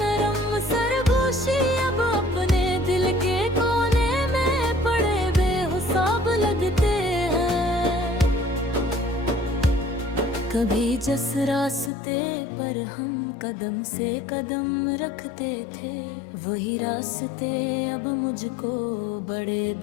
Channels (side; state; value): right; drops out; at 11.9 s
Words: कभी जिस रास्ते पर हम कदम से कदम रखते थे, वही रास्ते अब मुझको बड़े